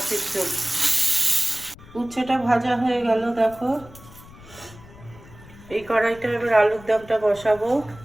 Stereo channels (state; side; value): noise; left; rumble, 20 dB below the sound